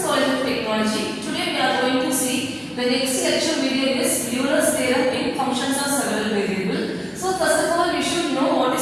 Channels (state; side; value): identical; both; correlation 1.00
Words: College of Technology. Today we are going to see the next lecture video is Euler's theorem in functions of several variables. So first of all we should know what